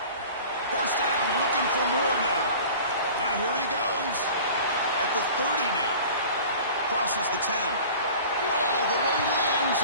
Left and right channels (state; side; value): inverted; both; correlation -0.42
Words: First down, looking for more now. Now here he goes. At the 30 now. Crosses the 10. All the way to the end